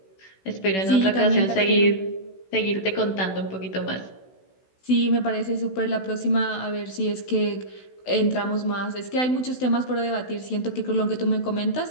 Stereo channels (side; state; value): right; late; 16 ms